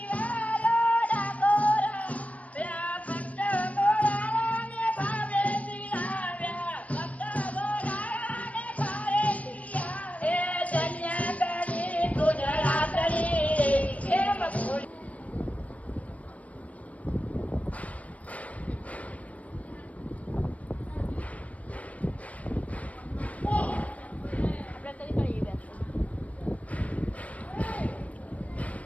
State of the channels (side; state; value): right; late; 0.067 ms